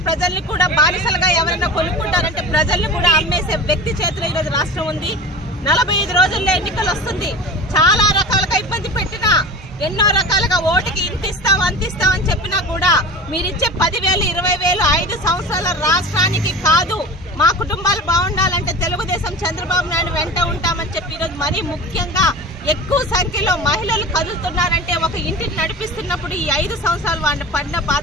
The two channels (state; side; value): normal; both; correlation 0.34